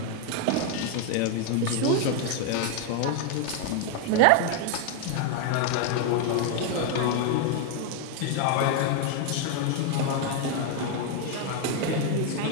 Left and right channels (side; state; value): both; different; correlation 0.01